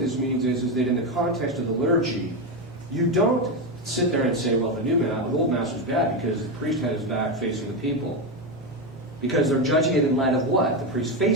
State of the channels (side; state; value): both; normal; correlation 0.12